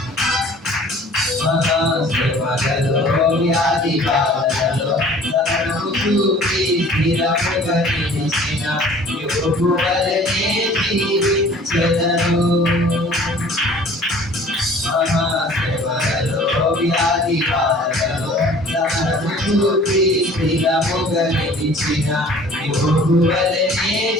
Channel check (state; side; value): normal; both; correlation 0.50